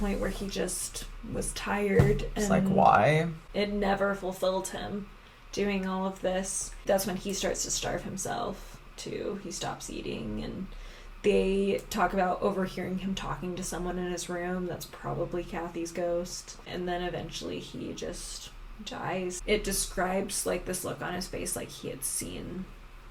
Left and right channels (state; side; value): identical; both; correlation 1.00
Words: where he just was tired. It's like, why? It never fulfilled him doing all of this. That's when he starts to starve himself too. He stops eating, and they talk about overhearing him talking to someone in his room. That's probably Kathy's ghost. And then eventually he just dies. It describes, like, this look on his face, like he had seen